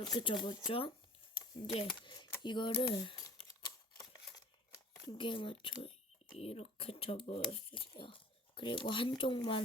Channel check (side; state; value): both; normal; correlation 0.47